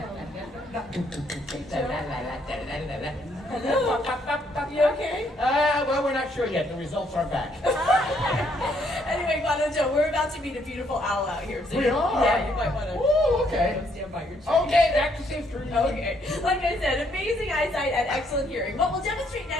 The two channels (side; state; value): both; normal; correlation 0.70